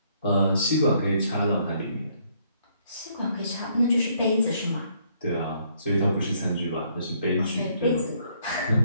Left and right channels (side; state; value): both; inverted; correlation -0.68